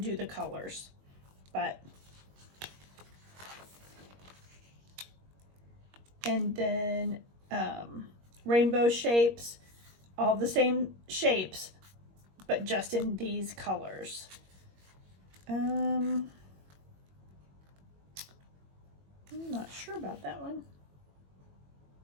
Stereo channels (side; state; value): left; late; 21 ms